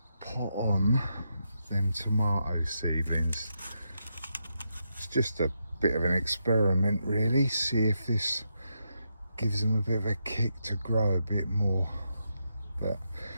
pot on them tomato seedlings. It's just a bit of an experiment, really. See if this gives them a bit of a kick to grow a bit more. But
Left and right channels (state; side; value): inverted; both; correlation -0.83